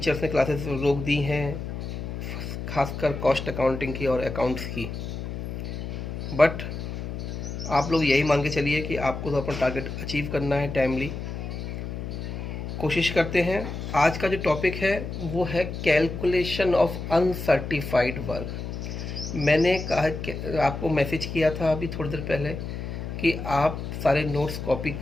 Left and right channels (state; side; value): noise; left; hum, 6 dB below the sound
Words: ने क्लासेस रोक दी हैं, खासकर कॉस्ट अकाउंटिंग की और अकाउंट्स की। बट आप लोग यही मान के चलिए कि आपको तो अपना टारगेट अचीव करना है टाइमली। कोशिश करते हैं। आज का जो टॉपिक है वो है कैलकुलेशन ऑफ अनसर्टिफाइड वर्क। मैंने कहा आपको मैसेज किया था अभी थोड़ी देर पहले कि आप सारे नोट्स कॉपी